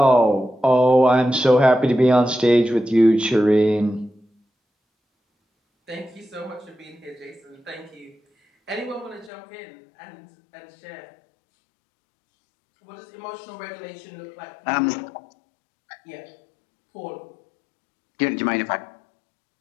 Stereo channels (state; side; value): drops out; right; at 9.3 s